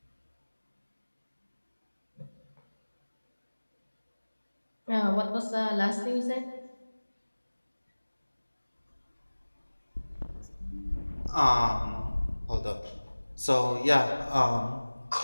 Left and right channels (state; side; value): inverted; both; correlation -1.00